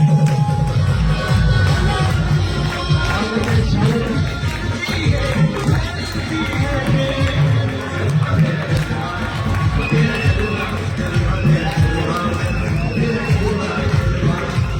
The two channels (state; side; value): identical; both; correlation 1.00